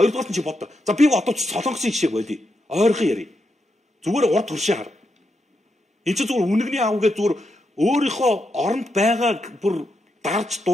нь чи боддоо. За би одоо ч Солонгосын жишээг болъё. Ойрхон ярив. Зүгээр урд туршаа хар. Энд чи зүгээр үнэгний аавгээ зүгээр өөрийнхөө оронд байгаа бүр дарж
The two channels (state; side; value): normal; both; correlation 0.83